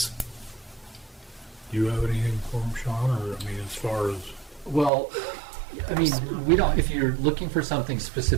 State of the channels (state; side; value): drops out; left; at 4.9 s